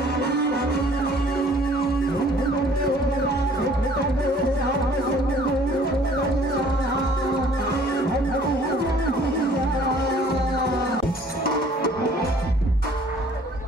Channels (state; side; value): normal; both; correlation 0.55